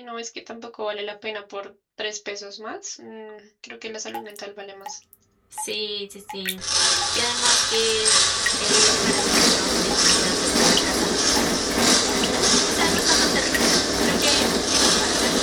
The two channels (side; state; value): both; identical; correlation 1.00